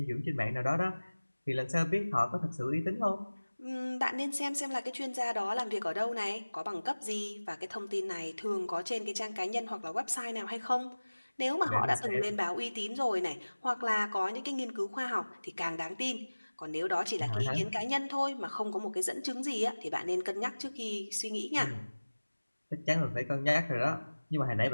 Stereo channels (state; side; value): inverted; both; correlation -1.00